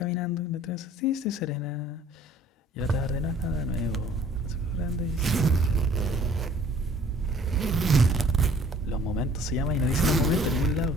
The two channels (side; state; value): both; normal; correlation 0.54